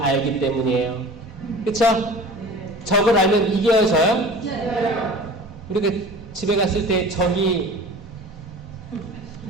알기 때문이에요. 그쵸? 적을 알면 이겨져요? 우리가 집에 갔을 때 적이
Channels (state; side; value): normal; both; correlation 0.40